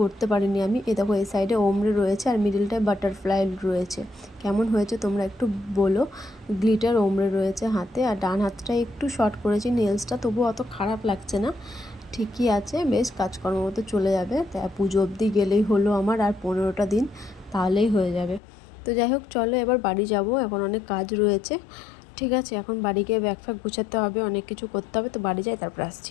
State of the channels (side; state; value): right; drops out; at 18.4 s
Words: করতে পারিনি আমি। এ দেখো এই সাইডে ওমরে রয়েছে আর মিডিলটায় বাটারফ্লাই রয়েছে। কেমন হয়েছে তোমরা একটু বলো। গ্লিটার ওমরে রয়েছে হাতে, আর ডান হাতটা একটু শর্ট করেছি নেলসটা, তবু অত খারাপ লাগছে না, ঠিকই আছে, বেশ কাজকর্ম মতো চলে যাবে। তাই পুজো অবধি গেলেই হলো আমার, আর 15টা দিন তাহলেই হয়ে যাবে। তো যাই হোক চলো এবার বাড়ি যাব, এখন অনেক কাজ রয়েছে। ঠিক আছে, এখন বাড়ি গিয়ে ব্যাগ ফ্যাগ গুছাতে হবে, অনেক কিছু করতে হবে। তো বাড়ি যাই, তারপর